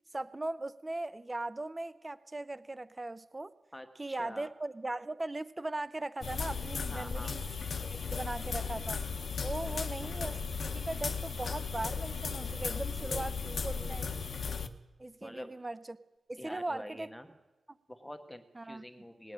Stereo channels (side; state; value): both; normal; correlation 0.89